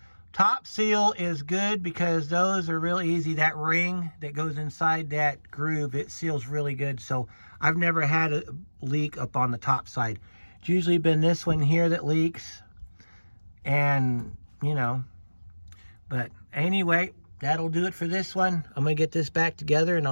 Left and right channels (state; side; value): inverted; both; correlation -1.00